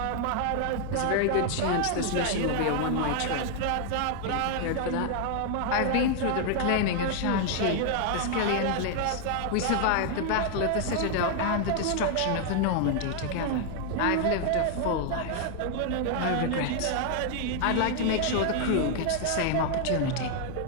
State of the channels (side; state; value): both; different; correlation 0.00